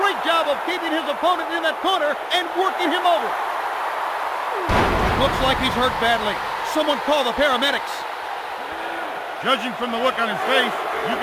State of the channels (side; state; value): both; identical; correlation 1.00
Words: great job of keeping his opponent in that corner and working him over. Looks like he's hurt badly. Someone call the paramedics. Judging from the look on his face, you